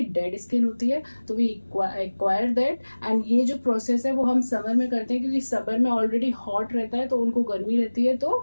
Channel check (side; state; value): both; inverted; correlation -1.00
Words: डेड स्किन होती है. तो वी एक्वायर दैट. एंड ये जो प्रोसेस है वो हम समर में करते हैं क्योंकि समर में ऑलरेडी हॉट रहता है, तो उनको गर्मी रहती है.